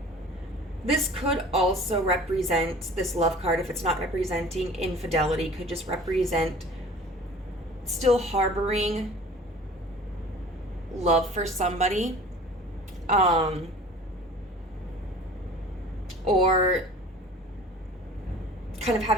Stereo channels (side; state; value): both; normal; correlation 0.44